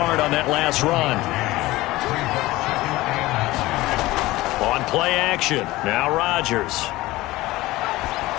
on that last run. On play action, now Rodgers.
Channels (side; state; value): right; quieter; 18.6 dB